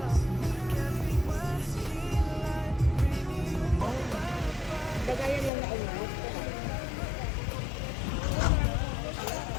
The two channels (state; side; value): drops out; right; at 5.5 s